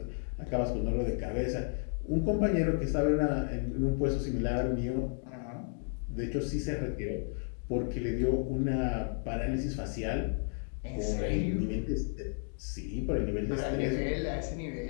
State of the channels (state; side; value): silent; right; 56 dB below the other